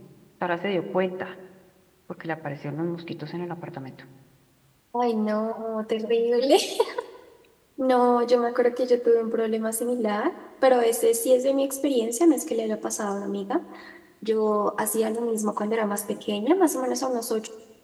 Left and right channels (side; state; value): both; identical; correlation 1.00